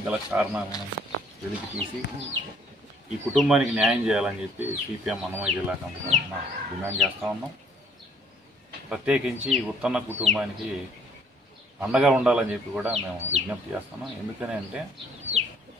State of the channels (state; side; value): normal; both; correlation 0.61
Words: గల కారణాలను వెలికి తీసి ఈ కుటుంబానికి న్యాయం చేయాలని చెప్పి సిపిఎం అన్నమయ్య జిల్లా కమిటీ తరఫున డిమాండ్ చేస్తూ ఉన్నాం. ప్రత్యేకించి ఉత్తన్న కుటుంబానికి అండగా ఉండాలని చెప్పి కూడా మేము విజ్ఞప్తి చేస్తున్నాం. ఎందుకని అంటే